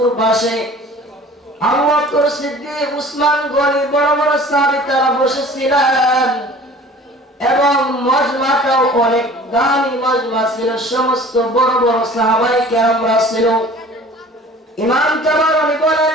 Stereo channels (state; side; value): normal; both; correlation 0.46